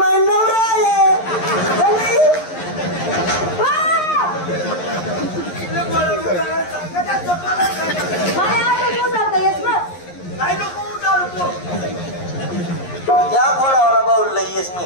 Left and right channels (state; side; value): late; right; 11 ms